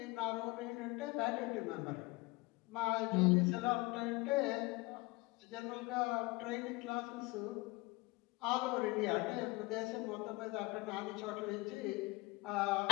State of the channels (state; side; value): quieter; right; 23.6 dB